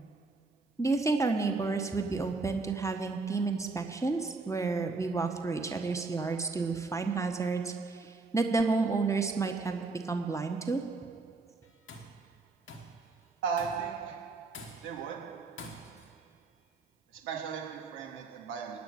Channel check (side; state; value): left; quieter; 3.8 dB